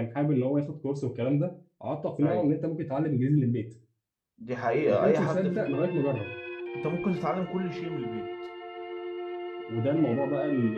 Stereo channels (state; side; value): identical; both; correlation 1.00